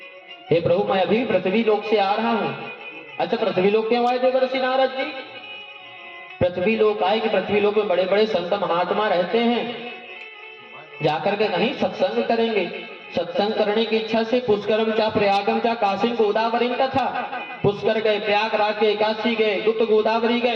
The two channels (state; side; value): identical; both; correlation 1.00